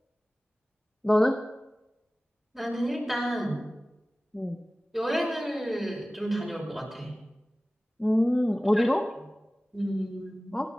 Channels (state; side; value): normal; both; correlation 0.97